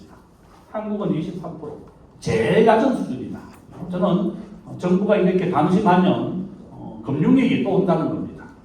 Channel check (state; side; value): identical; both; correlation 1.00